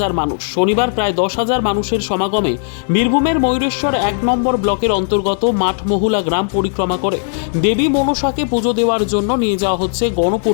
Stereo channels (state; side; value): silent; right; digital silence